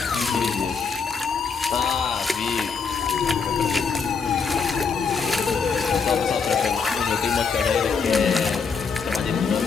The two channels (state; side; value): quieter; right; 5.5 dB